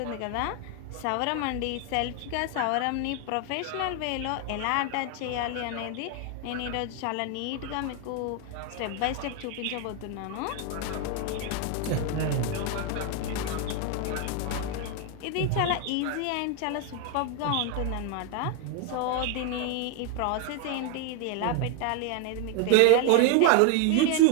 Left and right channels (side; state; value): both; different; correlation 0.01